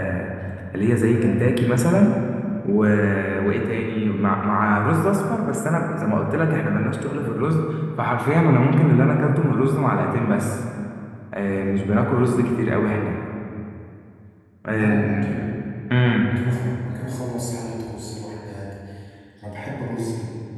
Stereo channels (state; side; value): identical; both; correlation 1.00